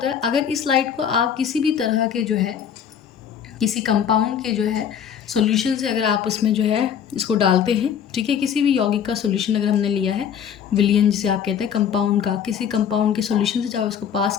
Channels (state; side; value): quieter; right; 8.2 dB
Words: है, अगर इस लाइट को आप किसी भी तरह के जो है किसी कंपाउंड के जो है सॉल्यूशन से अगर आप उसमें जो है इसको डालते हैं, ठीक है, किसी भी यौगिक का सॉल्यूशन अगर हमने लिया है, विलियन जिसे आप कहते हैं कंपाउंड का, किसी कंपाउंड के सॉल्यूशन से जब आप इसको पास